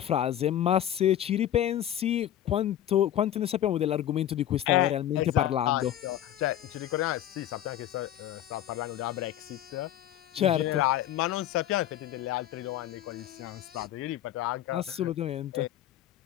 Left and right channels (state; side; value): quieter; right; 11.7 dB